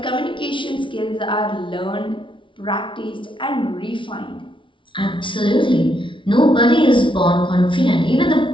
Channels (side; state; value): right; late; 0.25 ms